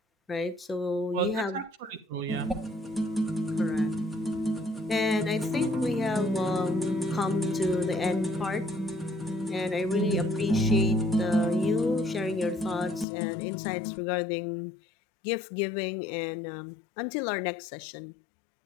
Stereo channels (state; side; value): drops out; right; at 13.1 s